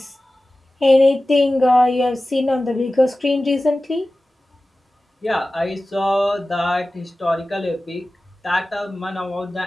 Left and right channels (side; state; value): both; normal; correlation 0.96